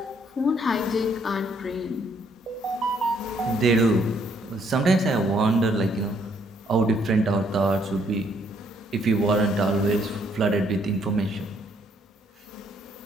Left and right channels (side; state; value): both; normal; correlation 0.68